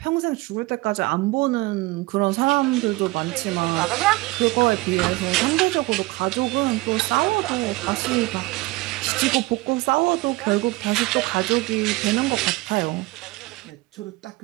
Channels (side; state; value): left; quieter; 21.7 dB